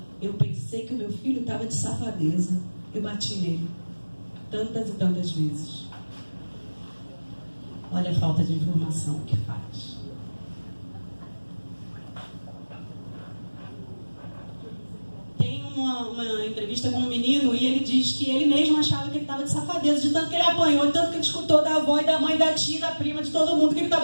eu pensei que o meu filho estava de safadeza. Eu bati nele tantas e tantas vezes. Olha a falta de informação que faz. Tem uma entrevista com um menino e ele diz que ele mesmo achava que ele estava de safadeza, de tanto que ele apanhou, de tanto que ele escutou da avó e da mãe, da tia, da prima, de todo mundo que ele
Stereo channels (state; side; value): inverted; both; correlation -1.00